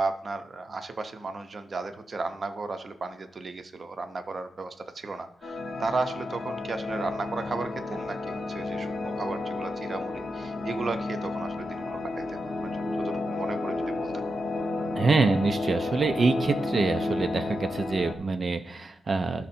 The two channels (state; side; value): normal; both; correlation 0.88